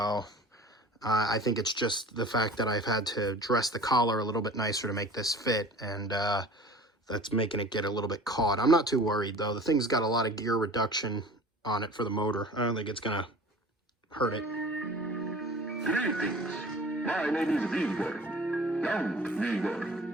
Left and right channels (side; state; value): both; normal; correlation 0.42